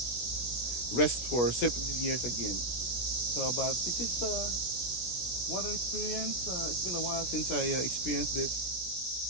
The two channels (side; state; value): right; late; 17 ms